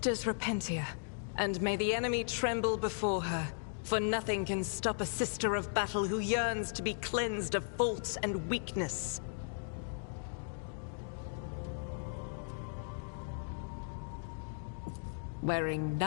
Repentia, and may the enemy tremble before her, for nothing can stop a sister of battle who yearns to be cleansed of faults and weakness. Wearing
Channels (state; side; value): silent; right; digital silence